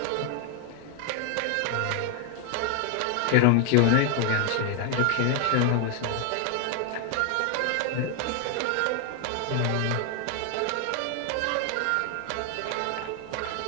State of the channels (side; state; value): both; different; correlation 0.00